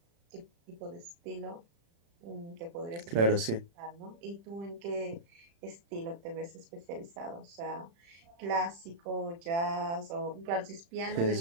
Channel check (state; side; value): late; left; 35 ms